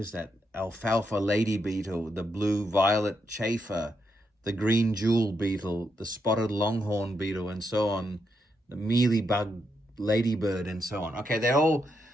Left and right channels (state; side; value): normal; both; correlation 0.81